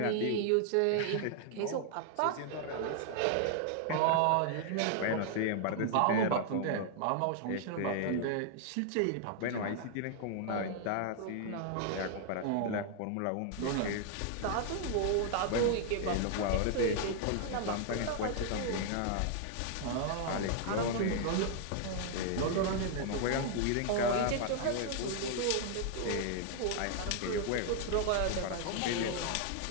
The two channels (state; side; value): different; both; correlation 0.00